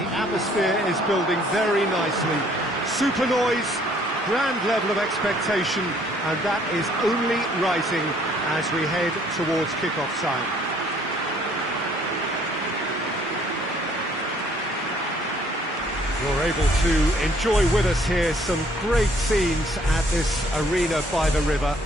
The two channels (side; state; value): both; normal; correlation 0.62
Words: atmosphere is building very nicely. Super noise, grand level of expectation, and that is only rising as we head towards kick-off time. You're able to enjoy with us here some great scenes at this arena by the river.